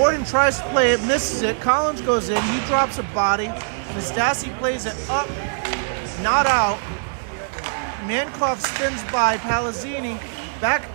tries to play it, misses it. Collins goes in. He drops a body. Nastasi plays it up, not out. Mankoff spins by Palazzini. Back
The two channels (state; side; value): silent; left; 64 dB below the other